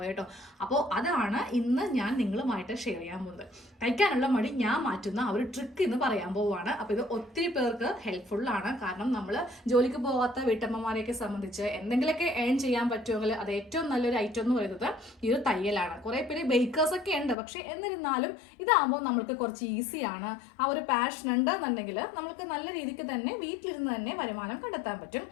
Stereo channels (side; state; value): right; drops out; at 17.4 s